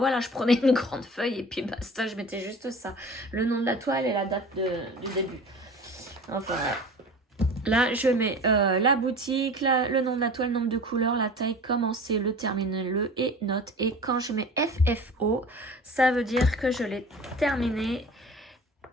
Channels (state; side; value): normal; both; correlation 0.39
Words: je prenais une grande feuille et puis basta, je mettais juste ça. Le nom de la toile et la date du début. Enfin, là, je mets la boutique, le nom de la toile, nombre de couleurs, la taille, commencer, le terminer, le et note. Et quand je mets FFO, ça veut dire que je l'ai terminé